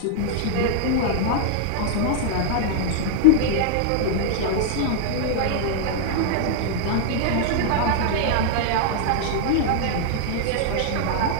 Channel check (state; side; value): different; both; correlation -0.01